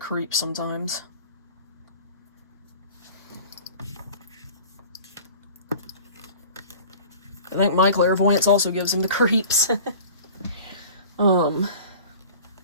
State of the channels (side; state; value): both; inverted; correlation -0.42